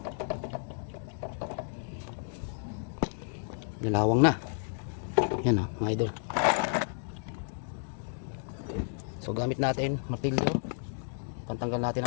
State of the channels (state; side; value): silent; right; digital silence